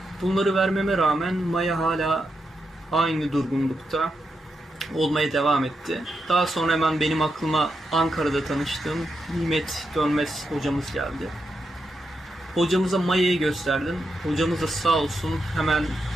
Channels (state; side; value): normal; both; correlation 0.85